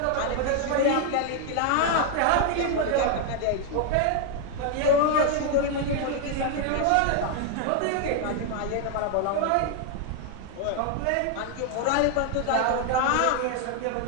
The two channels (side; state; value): both; different; correlation 0.00